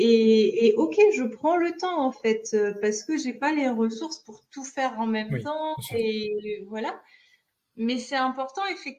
OK, je prends le temps en fait parce que j'ai pas les ressources pour tout faire en même Oui, temps bien sûr. et voilà. Mais c'est important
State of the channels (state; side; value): identical; both; correlation 1.00